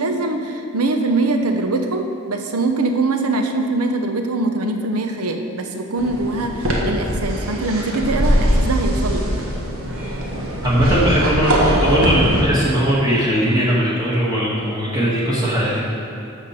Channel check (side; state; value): both; normal; correlation 0.47